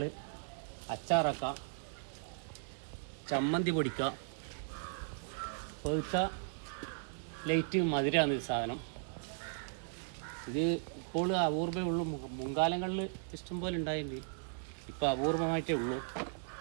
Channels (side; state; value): left; silent; digital silence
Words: അച്ചാറാക്കാം, ചമ്മന്തി പൊടിക്കാം, പഴുത്ത ലൈറ്റ് മധുരമാണ് ഈ സാധനം. ഇത് ഇപ്പോൾ അപൂർവമേ ഉള്ളൂ. മുൻകാലങ്ങളിൽ ഇഷ്ടംപോലെ ഉണ്ടായിട്ടുണ്ട്, ഇപ്പോൾ അപൂർവമായിട്ടേ ഉള്ളൂ.